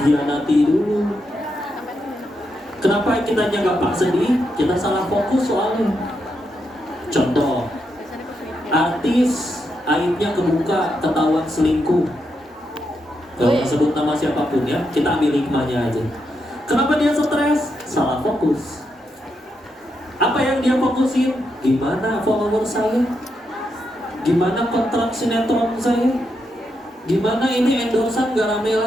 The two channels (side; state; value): both; normal; correlation 0.83